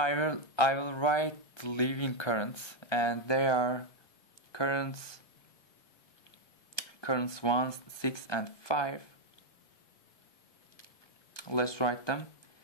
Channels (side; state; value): right; late; 1.2 ms